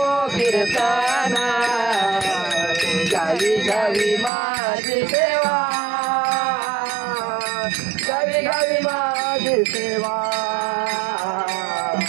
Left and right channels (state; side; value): drops out; left; at 4.3 s